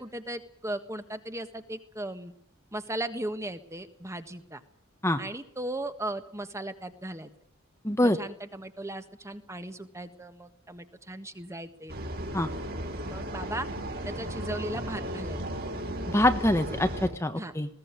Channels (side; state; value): both; normal; correlation 0.69